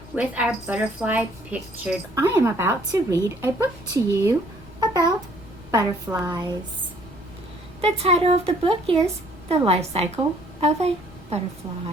with our butterfly pictures. I am about to read a book to you about butterflies. The title of the book is The Life Cycle of a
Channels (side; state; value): left; noise; rumble, 21 dB below the sound